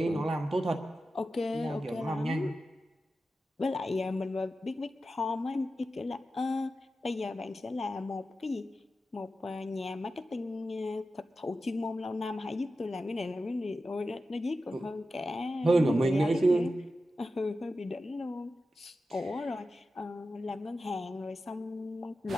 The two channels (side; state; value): both; normal; correlation 0.92